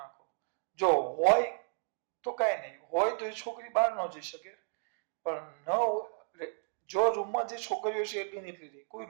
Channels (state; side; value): silent; left; 56 dB below the other